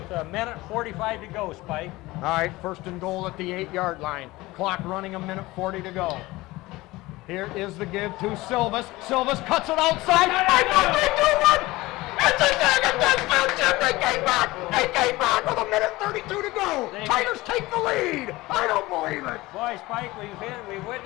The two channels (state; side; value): quieter; right; 19.8 dB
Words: 1:45 to go, Spike. All right, 1st and goal at the 8-yard line. Clock running 1:40 to go. Here is the give to Silvas. Silvas cuts it outside. I know they do one. It's a second touchdown, Jim. They came back. They came back with 1:32 2 to go. Tigers take the lead. I don't believe it. Boy, Spike, we've